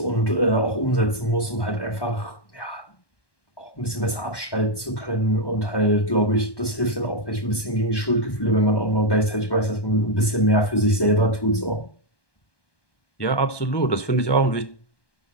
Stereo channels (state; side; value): late; right; 1.1 ms